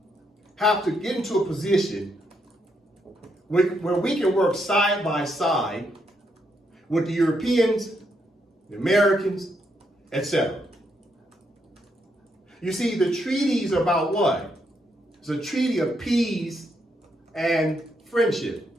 have to get into a position where we can work side by side with the Europeans, the Americans, etc. You see, the treaties are about what? It's a treaty of peace and friendship.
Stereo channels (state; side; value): normal; both; correlation 0.78